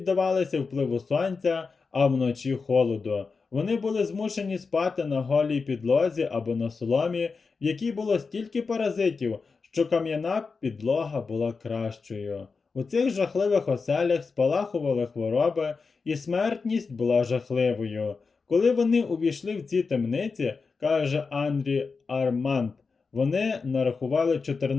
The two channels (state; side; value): quieter; right; 4.7 dB